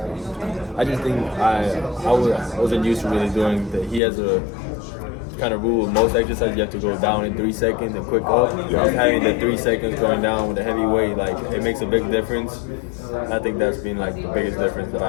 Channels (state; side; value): drops out; right; at 4.0 s